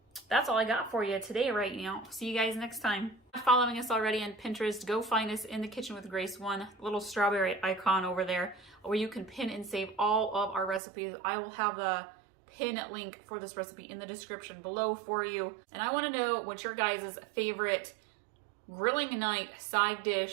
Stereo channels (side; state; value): left; drops out; at 10.8 s